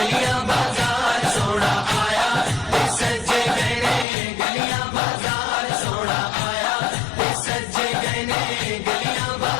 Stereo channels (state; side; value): drops out; right; at 4.0 s